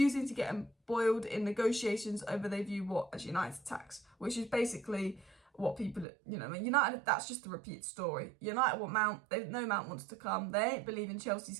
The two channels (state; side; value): drops out; left; at 6.1 s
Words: to get embroiled in negotiations over they view what as United tax, which is basically what people, you know, United, that's just a repeat story. United want Mount, they know Mount wants to come, they ain't believing Chelsea's